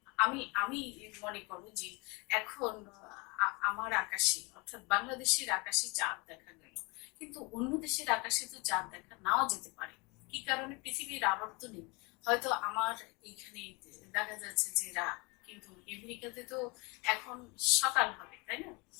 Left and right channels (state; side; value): quieter; right; 27.5 dB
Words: আমি মনে করব যে এখন আমার আকাশে, অর্থাৎ বাংলাদেশের আকাশে চাঁদ দেখা গেল, কিন্তু অন্য দেশের আকাশে তো চাঁদ দেখা নাও যেতে পারে। কি কারণে? পৃথিবীর আবর্তনে হয়তো আমার এইখানে দেখা যাচ্ছে যে রাত, কিন্তু আমেরিকাতে তো এখন সকাল হবে, তাই না?